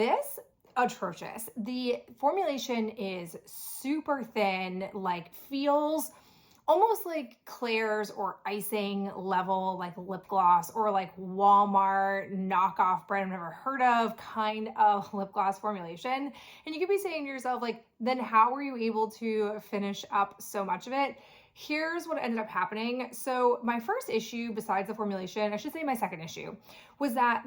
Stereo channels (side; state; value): both; identical; correlation 1.00